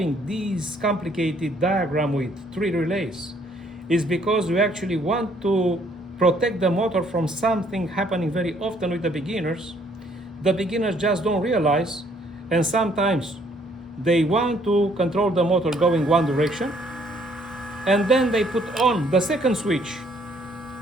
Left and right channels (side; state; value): both; normal; correlation 0.64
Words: this complicated diagram with 3 relays is because we actually want to protect the motor from something happening very often with the beginners. the beginners just don't realize, and sometimes they want to control the motor going one direction, and then they put on the second switch.